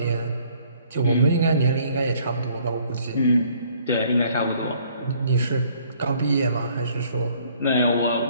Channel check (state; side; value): inverted; both; correlation -0.60